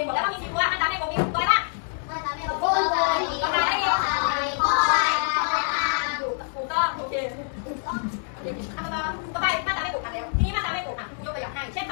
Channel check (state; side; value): silent; right; 61 dB below the other